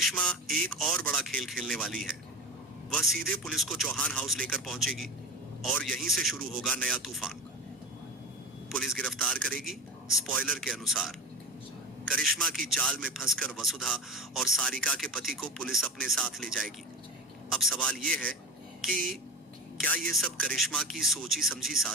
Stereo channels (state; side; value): normal; both; correlation 0.28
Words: एक और बड़ा खेल खेलने वाली है। वह सीधे पुलिस को चौहान हाउस लेकर पहुंचेगी और यहीं से शुरू होगा नया तूफान। पुलिस गिरफ्तार करेगी। स्पॉइलर के अनुसार करिश्मा की चाल में फंसकर वसुधा और सारिका के पति को पुलिस अपने साथ ले जाएगी। अब सवाल यह है कि क्या यह सब करिश्मा की सोची समझी